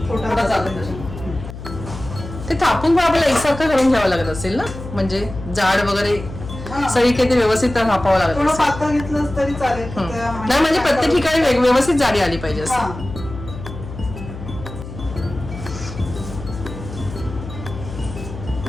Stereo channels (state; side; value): noise; left; hum, 11 dB below the sound